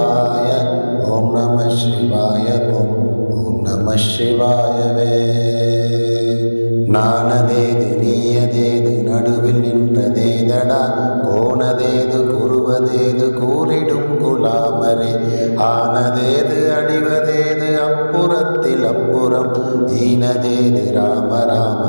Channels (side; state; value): both; inverted; correlation -1.00